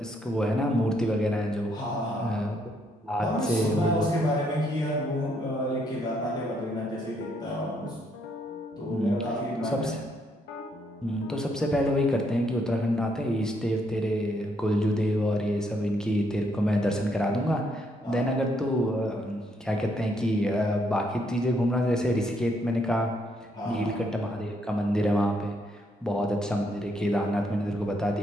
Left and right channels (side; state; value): both; normal; correlation 0.73